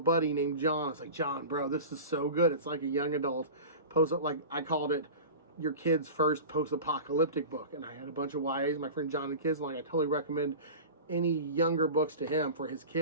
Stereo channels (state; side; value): inverted; both; correlation -0.33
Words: named John, I was like, John, bro, this is so good. It's like a young adult like I called it your kid's first post-apocalyptic book. And I had a bunch of YAs, my friend John and kids, and like, I totally recommend any younger books to him for his